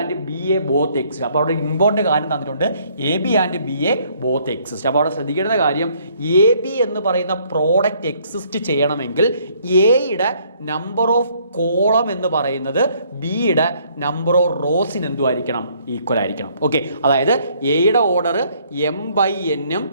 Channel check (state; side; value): inverted; both; correlation -0.64